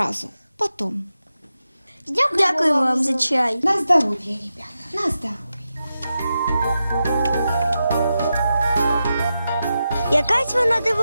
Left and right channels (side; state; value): both; inverted; correlation -0.89